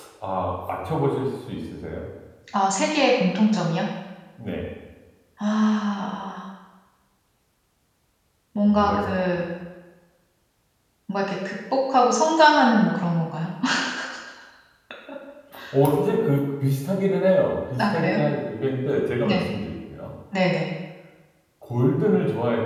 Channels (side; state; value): both; identical; correlation 1.00